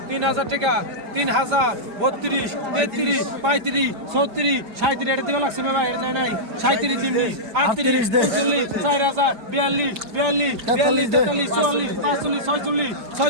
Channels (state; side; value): late; left; 5.0 ms